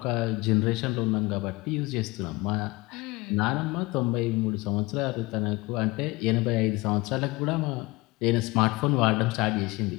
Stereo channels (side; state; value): right; quieter; 22.5 dB